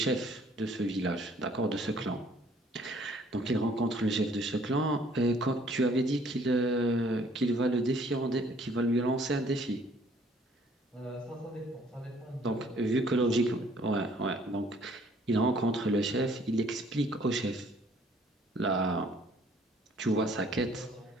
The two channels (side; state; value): both; normal; correlation 0.60